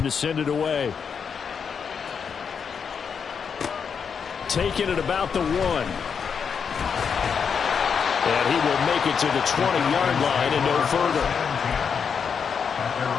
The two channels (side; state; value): right; quieter; 6.5 dB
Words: send it away. Taking it about the 1. And he will make it to the 20-yard line and no further. At their